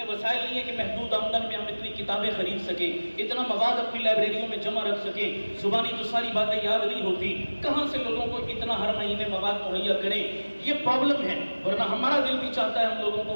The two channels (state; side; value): inverted; both; correlation -1.00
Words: وسائل نہیں ہے کہ محدود آمدن میں ہم اتنی کتابیں خرید سکیں، اتنا مواد اپنی لائبریریوں میں جمع رکھ سکیں، زبانی تو ساری باتیں یاد نہیں ہوتی، کہاں سے لوگوں کو اتنا ہر مہینے مواد مہیا کریں، یہ پرابلم ہے، ورنہ ہمارا دل بھی چاہتا ہے ہم لوگوں